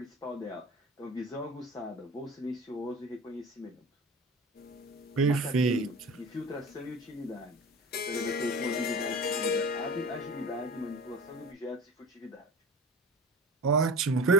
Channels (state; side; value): normal; both; correlation 0.35